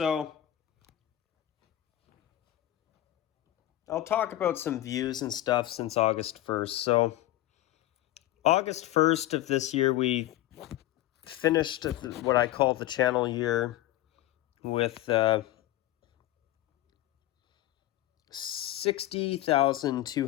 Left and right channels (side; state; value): right; quieter; 14.7 dB